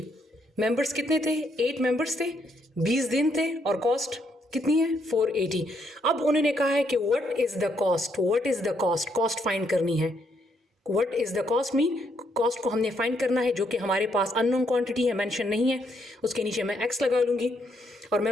मेंबर्स कितने थे, 8 मेंबर्स थे, 20 दिन थे और कॉस्ट कितनी है, 480। अब उन्होंने कहा है कि what is the cost, what is the cost, cost find करनी है। What is the cost mean cost को हमने फाइंड करना है, जो कि हमारे पास अननोन क्वांटिटी है, मेंशन नहीं है। उसके नीचे मैं एक्स लगा लूँगी। और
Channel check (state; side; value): normal; both; correlation 0.74